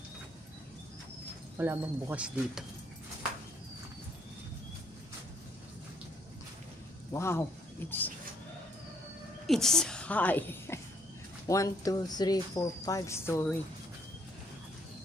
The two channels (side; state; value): both; normal; correlation 0.68